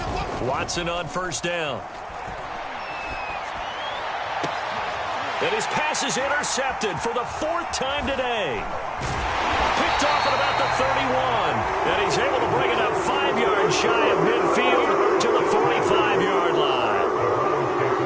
Watson on first down. And his pass is intercepted for the 4th time today. Picked off at about the 31. And he's able to bring it up 5 yards shy of midfield to the 45-yard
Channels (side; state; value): both; identical; correlation 1.00